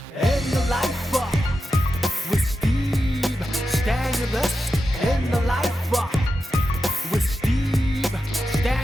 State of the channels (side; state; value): both; normal; correlation 0.90